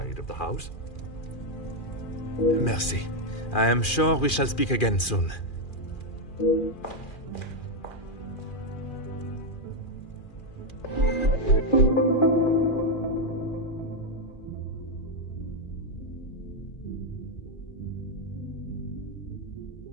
of the house. Merci. I am sure we shall speak again soon.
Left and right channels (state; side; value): late; right; 2.4 ms